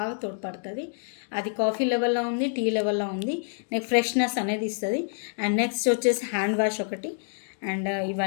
తోడ్పడుతుంది. అది కాఫీ లెవెల్లో ఉంది, టీ లెవెల్లో ఉంది. నెక్స్ట్ ఫ్రెష్నెస్ అనేది ఇస్తుంది. అండ్ నెక్స్ట్ వచ్చేసి హ్యాండ్ వాష్ ఒకటి, అండ్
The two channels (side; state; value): right; silent; digital silence